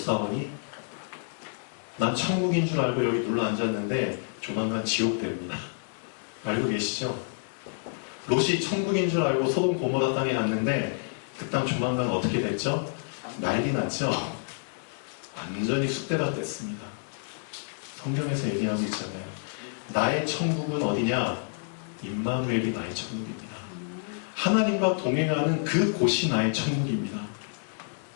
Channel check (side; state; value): right; silent; digital silence